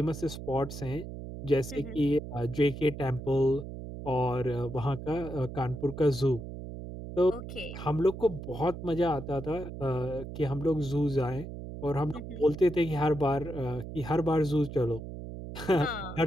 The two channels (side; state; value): right; noise; hum, 9 dB below the sound